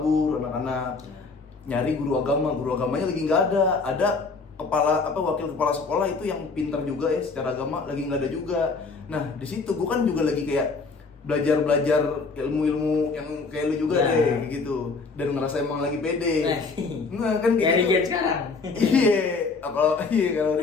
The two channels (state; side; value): quieter; right; 4.3 dB